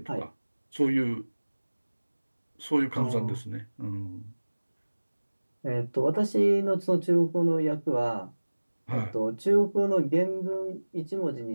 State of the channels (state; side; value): inverted; both; correlation -1.00